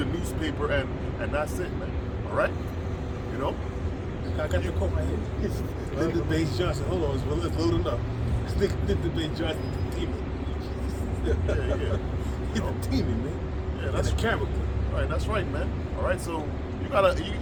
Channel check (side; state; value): both; identical; correlation 1.00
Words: newspaper and that's it, man. All right. You know. I got the quote right here. Lyndon Baines Johnson. Hold on, it's loading up. Lyndon Baines Johnson, the demon. Yeah. He's a demon, man. Yeah, that's a character. Right, that's right, man. All right, so you